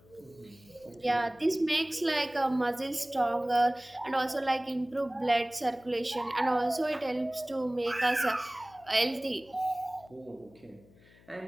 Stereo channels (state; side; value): noise; left; hum, 26 dB below the sound